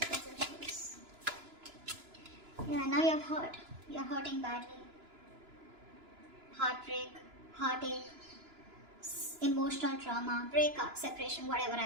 in reverse? Yeah, now you're hurt. You're hurting badly. Heartbreak, heartache, emotional trauma, breakup, separation, whatever,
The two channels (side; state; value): left; late; 2.9 ms